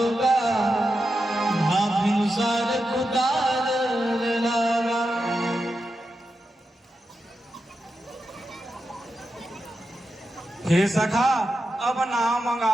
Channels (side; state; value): both; normal; correlation 0.89